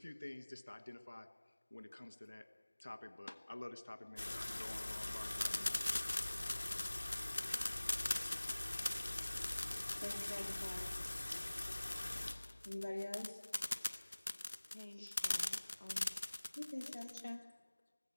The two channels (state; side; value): inverted; both; correlation -1.00